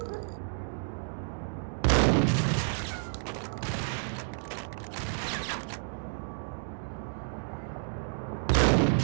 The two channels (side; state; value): left; silent; digital silence